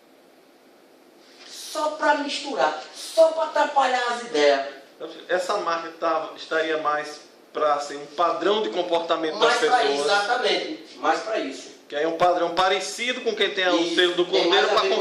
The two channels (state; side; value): identical; both; correlation 1.00